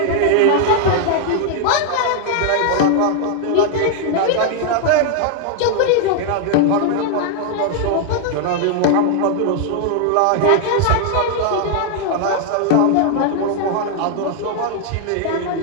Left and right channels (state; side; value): different; both; correlation 0.00